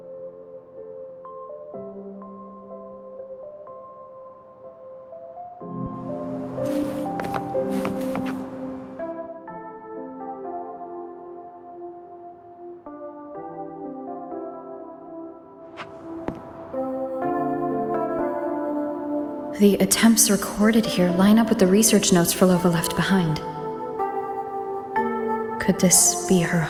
The attempts recorded here line up with the research notes Phrolova left behind. Could this be her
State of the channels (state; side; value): identical; both; correlation 1.00